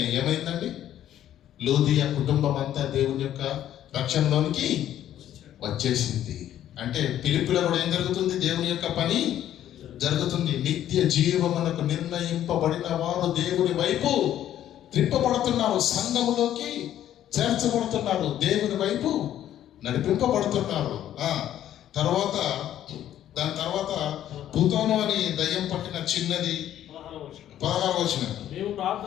ఏమైందండి? లూదియా కుటుంబం అంతా దేవుని యొక్క రక్షణలోనికి వచ్చేసింది. అంటే ఫిలిప్పిలో కూడా ఏం జరుగుతుంది? దేవుని యొక్క పని జరుగుతుంది. నిత్య జీవమునకు నిర్ణయింపబడిన వారు దేవుని వైపు త్రిప్పబడుతున్నారు, సంఘములోకి చేర్చబడుతున్నారు, దేవుని వైపు నడిపింపబడుతున్నారు. దాని తర్వాత భూతోను అని దయ్యం పట్టిన చిన్నది 16వ వచనం. మేము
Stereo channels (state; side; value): quieter; right; 11.6 dB